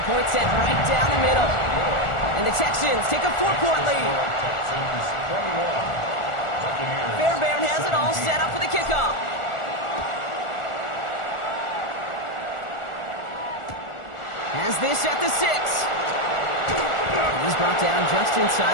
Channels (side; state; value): right; late; 1.4 ms